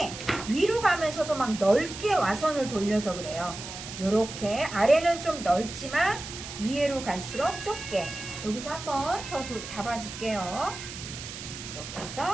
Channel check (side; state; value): right; noise; hiss, 10 dB below the sound